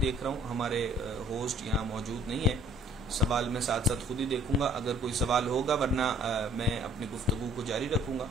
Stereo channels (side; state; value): both; normal; correlation 0.57